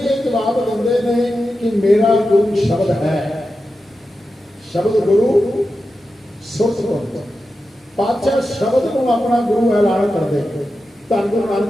ਇਹ ਜਵਾਬ ਦਿੰਦੇ ਨੇ ਕਿ ਮੇਰਾ ਗੁਰੂ ਸ਼ਬਦ ਹੈ। ਸ਼ਬਦ ਗੁਰੂ ਸੁਰਤ ਗੁਰੂ। ਪਾਤਸ਼ਾਹ ਸ਼ਬਦ ਨੂੰ ਆਪਣਾ ਗੁਰੂ ਐਲਾਨ ਕਰਦੇ। ਧੰਨ ਗੁਰੂ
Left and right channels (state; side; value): normal; both; correlation 0.91